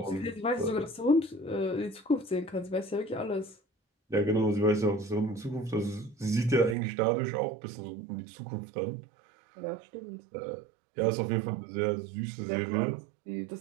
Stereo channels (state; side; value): drops out; left; at 6.8 s